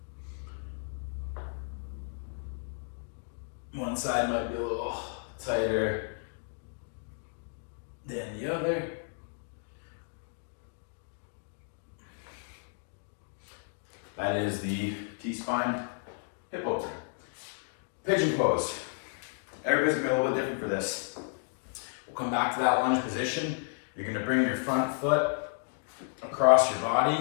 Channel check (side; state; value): right; silent; 56 dB below the other